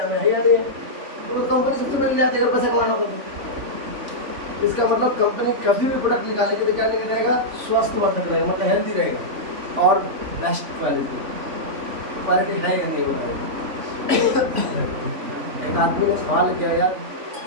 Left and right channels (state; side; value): late; left; 3.5 ms